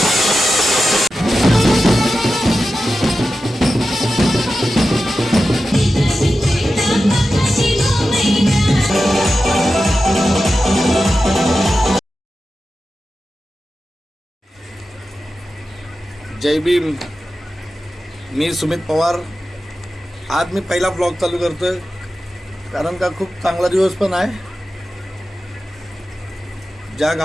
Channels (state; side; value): normal; both; correlation 0.92